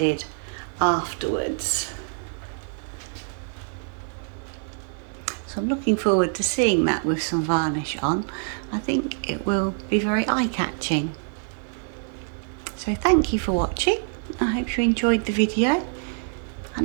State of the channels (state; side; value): silent; left; 55 dB below the other